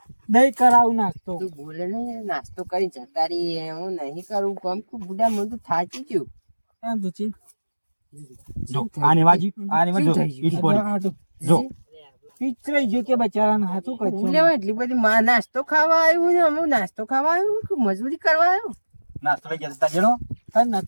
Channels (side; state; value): both; inverted; correlation -1.00